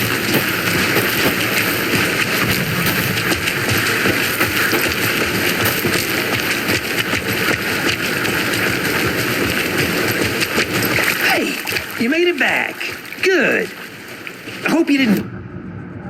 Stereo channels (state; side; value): identical; both; correlation 1.00